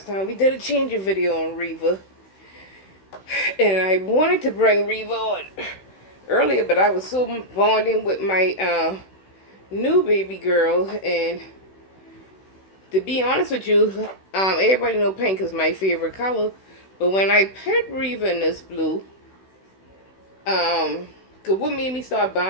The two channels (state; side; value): late; right; 16 ms